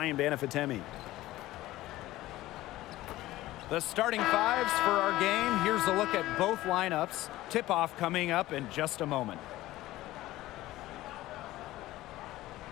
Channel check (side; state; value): right; quieter; 16.5 dB